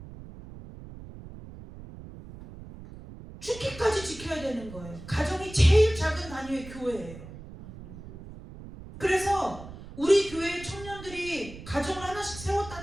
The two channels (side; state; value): right; noise; rumble, 15 dB below the sound